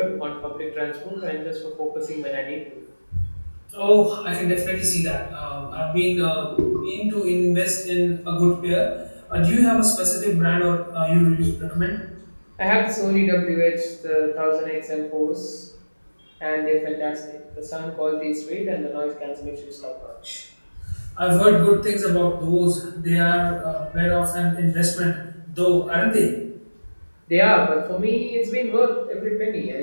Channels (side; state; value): both; inverted; correlation -1.00